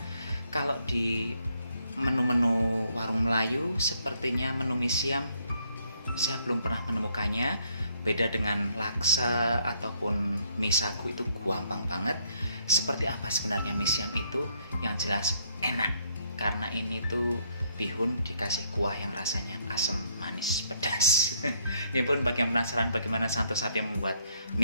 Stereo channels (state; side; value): inverted; both; correlation -0.69